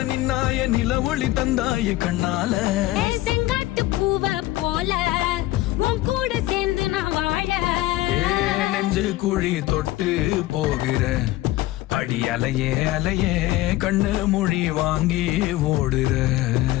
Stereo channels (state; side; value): quieter; right; 16.9 dB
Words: நின்னாய நில ஒளி தந்தாய கண்ணால. செங்காட்டு பூவ போல உன் கூட சேர்ந்து நான் வாழ. நெஞ்சு குழி தொட்டு போகிற அடி அலையே அலையே கண்ணு மொழி வாங்கி ஓடுற.